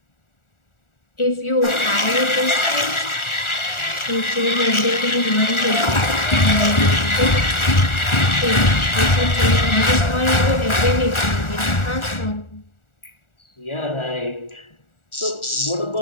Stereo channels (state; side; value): late; right; 1.4 ms